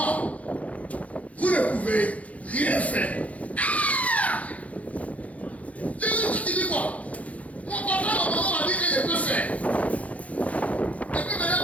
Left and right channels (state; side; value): late; right; 0.067 ms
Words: vous ne pouvez rien faire. Ah! Jésus, tu dis quoi? Mon papa, ma maman m'a dit que je peux faire. Et puis maintenant,